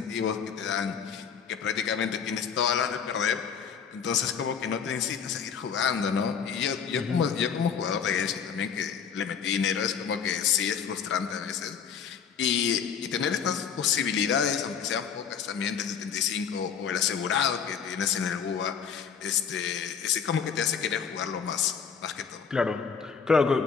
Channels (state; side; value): quieter; right; 7.0 dB